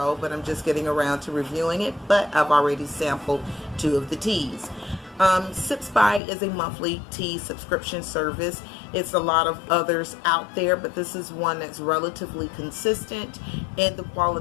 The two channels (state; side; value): drops out; right; at 6.2 s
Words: but I'm just getting around to reviewing it. But I've already sampled two of the teas. Sipsby is a monthly tea subscription service. It's a lot of others out there, but this is one that's relatively consistent in the